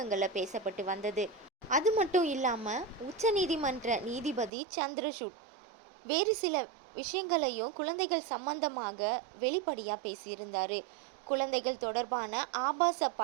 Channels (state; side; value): drops out; left; at 4.5 s